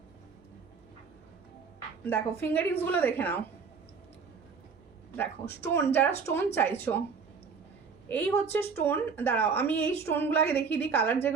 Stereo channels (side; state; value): left; quieter; 5.5 dB